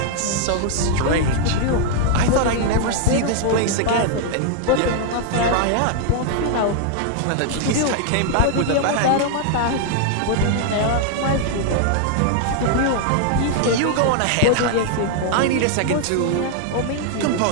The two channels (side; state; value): both; different; correlation 0.00